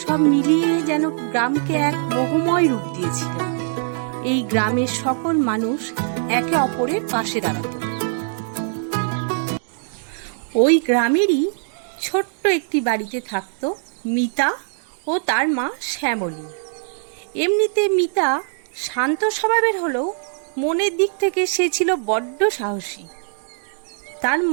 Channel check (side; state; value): left; silent; digital silence